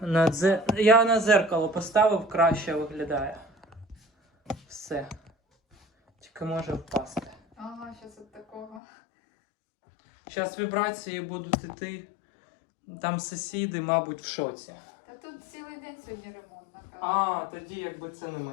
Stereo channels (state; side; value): drops out; right; at 8.8 s